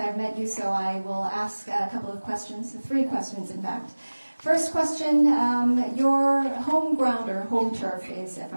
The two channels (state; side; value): inverted; both; correlation -1.00